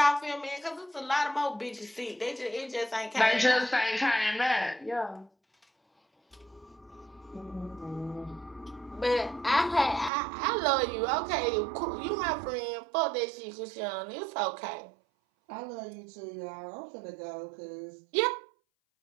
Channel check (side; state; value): left; drops out; at 10.1 s